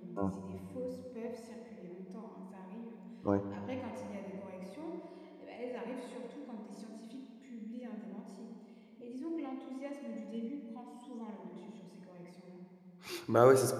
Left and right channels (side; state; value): both; identical; correlation 1.00